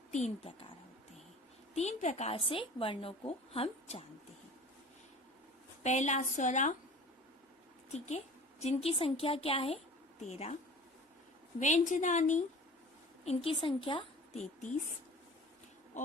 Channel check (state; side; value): normal; both; correlation 0.42